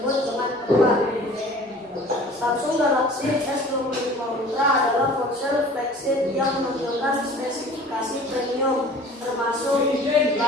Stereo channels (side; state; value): both; normal; correlation 0.46